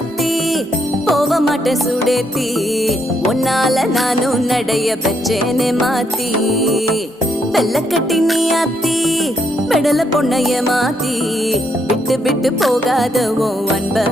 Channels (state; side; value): normal; both; correlation 0.75